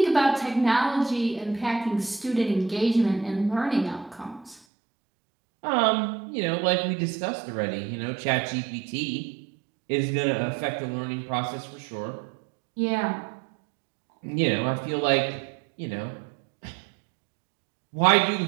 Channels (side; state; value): left; drops out; at 4.6 s